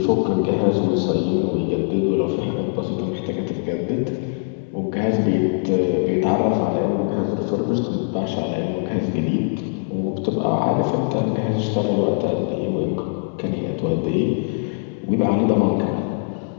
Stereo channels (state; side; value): silent; right; digital silence